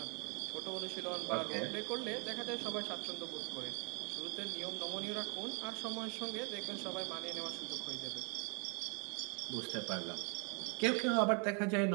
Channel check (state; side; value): quieter; left; 35.5 dB